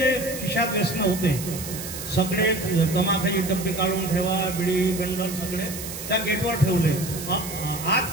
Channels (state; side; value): noise; right; hiss, 9 dB below the sound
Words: खिशात व्यसन होते सगळे तमाखाची डब्बे काढून ठेवा, बिडी बंडल सगळे त्या गेटवर ठेवले. आज